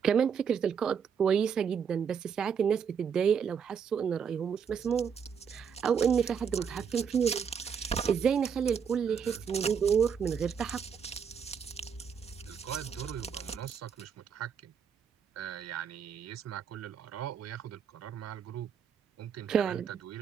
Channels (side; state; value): left; quieter; 7.1 dB